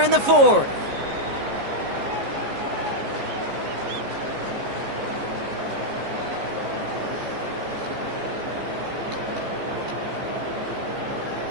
in the 4th.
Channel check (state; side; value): late; left; 14 ms